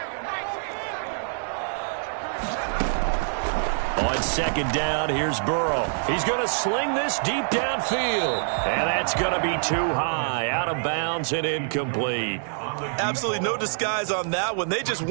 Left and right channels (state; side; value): silent; left; digital silence